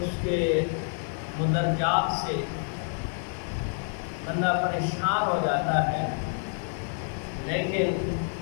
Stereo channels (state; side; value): silent; right; 56 dB below the other